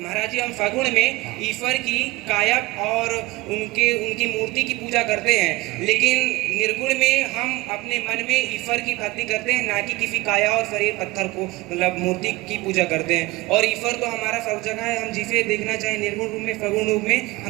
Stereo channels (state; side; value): quieter; left; 21.2 dB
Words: जी, हम सगुण में ईश्वर की काया और उनकी मूर्ति की पूजा करते हैं, लेकिन निर्गुण में हम अपने मन में ईश्वर की भक्ति करते हैं, ना कि किसी काया और शरीर पत्थर को, मतलब मूर्ति की पूजा करते हैं। और ईश्वर तो हमारा सब जगह है, हम जिसे देखना चाहें निर्गुण रूप में, सगुण रूप में